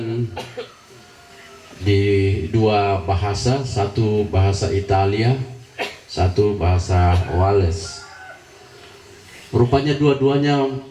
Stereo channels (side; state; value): both; identical; correlation 1.00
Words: di dua bahasa, satu bahasa Italia, satu bahasa Wales. Rupanya dua-duanya